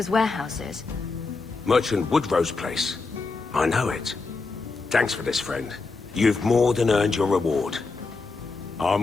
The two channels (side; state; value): right; quieter; 4.0 dB